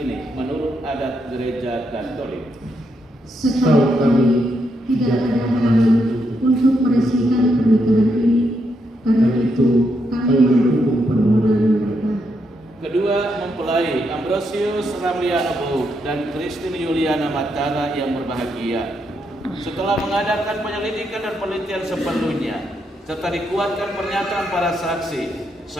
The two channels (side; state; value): both; normal; correlation 0.79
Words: menurut adat gereja Katolik? Setahu kami tidak ada halangan untuk meresmikan pernikahan ini. Karena itu kami mendukung permohonan mereka. Kedua mempelai Ambrosius Ramliano Bouk dan Christine Yuliana Matara yang berbahagia, setelah mengadakan penyelidikan dan penelitian seperlunya serta dikuatkan pernyataan para saksi,